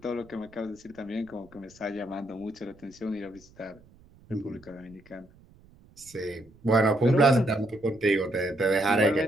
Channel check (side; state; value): right; noise; rumble, 26 dB below the sound